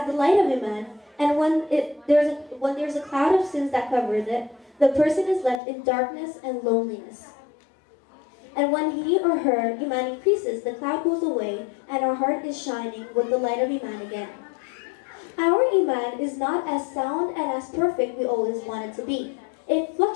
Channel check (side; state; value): right; drops out; at 5.6 s